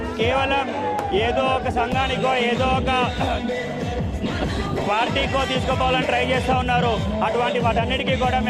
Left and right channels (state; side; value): identical; both; correlation 1.00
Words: కేవలం ఏదో ఒక సంఘానికో ఏదో ఒక పార్టీకో తీసుకుపోవాలని ట్రై చేస్తూ ఉన్నారు. అటువంటి వాటన్నిటికీ కూడా